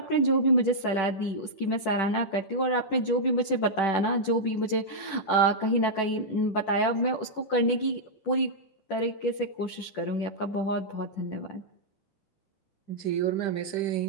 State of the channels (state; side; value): late; right; 10 ms